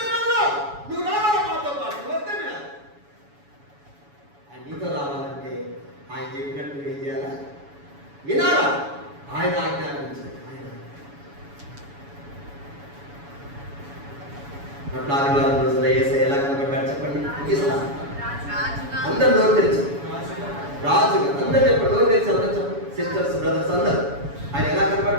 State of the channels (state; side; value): late; left; 7.1 ms